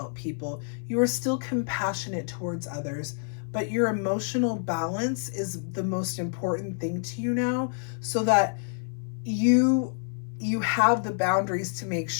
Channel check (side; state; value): right; silent; 56 dB below the other